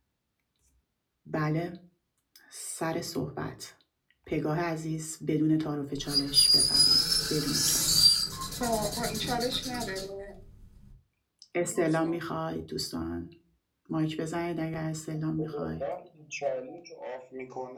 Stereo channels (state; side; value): identical; both; correlation 1.00